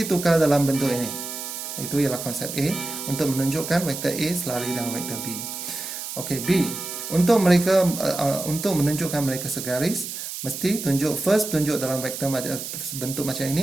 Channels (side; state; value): right; noise; hiss, 7 dB below the sound